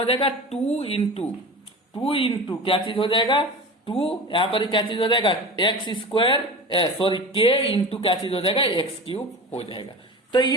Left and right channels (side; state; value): both; normal; correlation 0.32